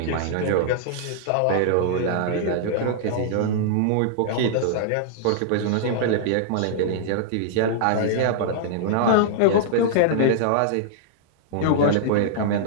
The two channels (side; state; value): both; different; correlation -0.02